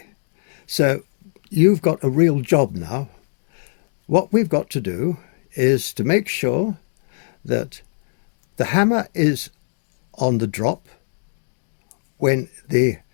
So you've got a real job now. What we've got to do is to make sure that the hammer is on the drop when the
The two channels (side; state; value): right; silent; digital silence